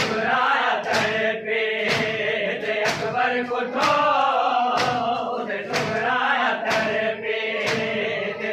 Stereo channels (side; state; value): both; identical; correlation 1.00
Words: धरती दे अकबर कुठो उदे सुगराया धरती दे